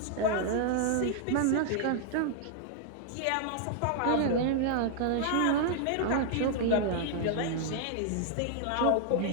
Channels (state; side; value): different; both; correlation 0.00